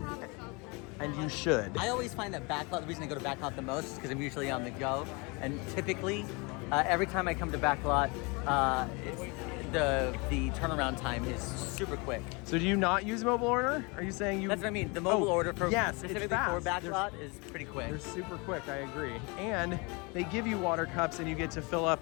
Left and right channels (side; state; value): right; quieter; 28.9 dB